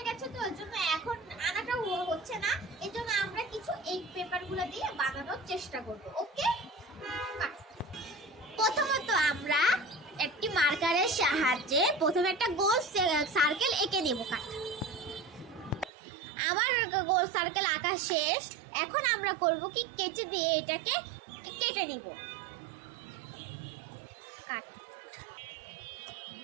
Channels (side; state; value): left; drops out; at 15.9 s